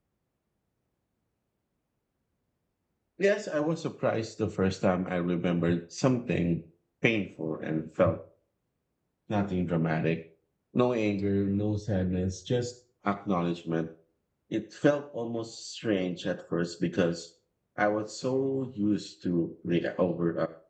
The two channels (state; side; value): identical; both; correlation 1.00